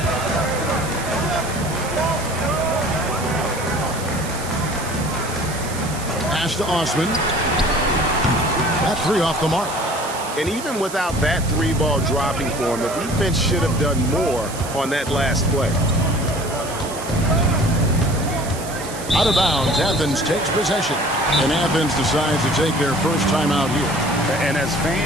Pass to Osman. That 3 off the mark. And even without that 3-ball dropping for him, the defense should have done more on that last play. Out of bounds, Athens takes possession. And Athens decides to take their first time out here. And as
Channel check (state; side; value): noise; right; hiss, 12 dB below the sound